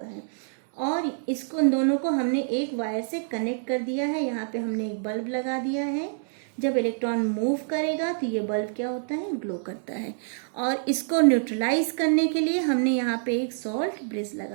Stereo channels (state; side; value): silent; left; 60 dB below the other